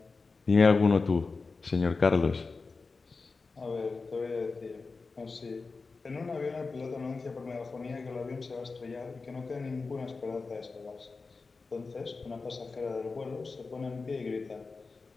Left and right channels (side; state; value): right; quieter; 4.2 dB